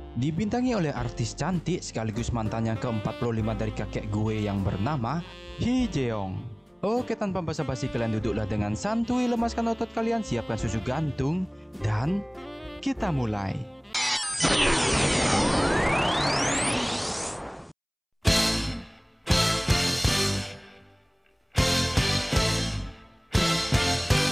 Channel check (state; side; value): identical; both; correlation 1.00